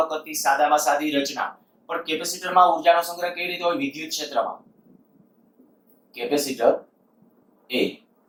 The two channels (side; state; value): both; identical; correlation 1.00